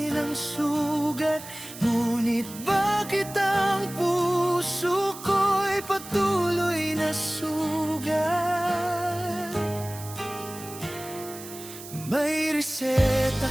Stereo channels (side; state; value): right; noise; hiss, 14 dB below the sound